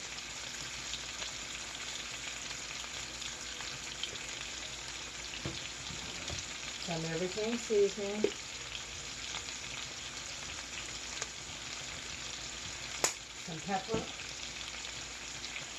Some everything seasoning. Some pepper.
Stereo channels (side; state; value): both; identical; correlation 1.00